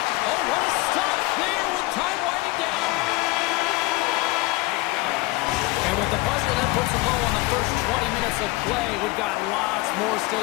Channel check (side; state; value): right; quieter; 21.8 dB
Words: Oh, what a stop there with time winding down! And with the buzzer that puts the ball on the first 20 minutes of play, we've got lots more